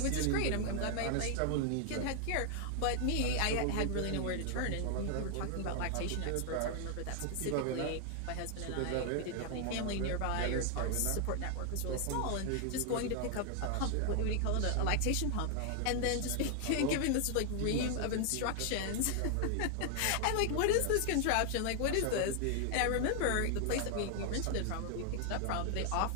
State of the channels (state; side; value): different; both; correlation 0.00